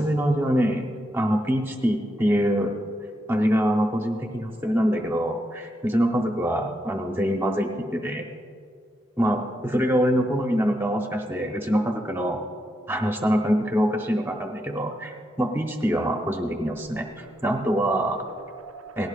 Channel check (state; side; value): normal; both; correlation 0.82